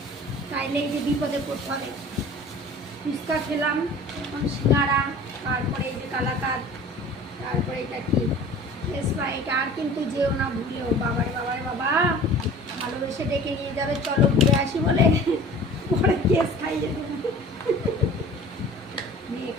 তাইলে এই যে বিপদে পড়তে হবে। ফুচকা খেলাম, এখন সিঙ্গারা, তারপরে এই যে কালাকাঁদ, তারপরে এটা কি স্প্রাইট। আর কিন্তু যেও না ভুলেও, বাবারে বাবারে বাবা, ভালোবেসে ডেকে নিয়ে যাবে চলো ঘুরে আসি বলে, পরে কেস খাইয়ে দেবো। মেয়ে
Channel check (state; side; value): normal; both; correlation 0.43